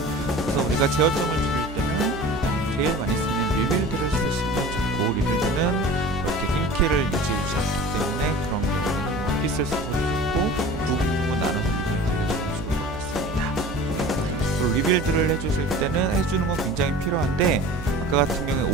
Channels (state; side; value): normal; both; correlation 0.40